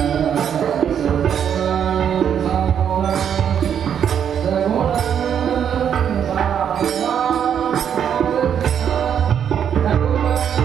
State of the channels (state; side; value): quieter; left; 8.6 dB